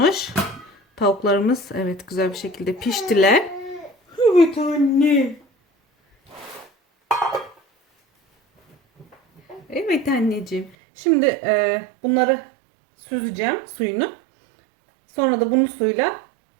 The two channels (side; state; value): left; drops out; at 10.8 s